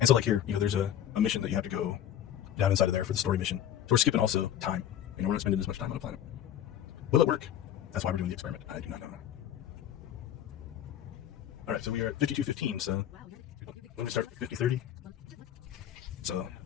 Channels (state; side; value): quieter; right; 10.6 dB